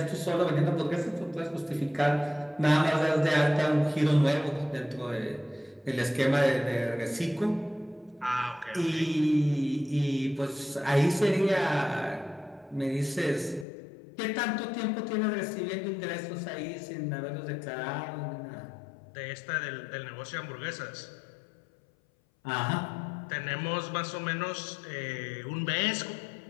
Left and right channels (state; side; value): drops out; right; at 13.7 s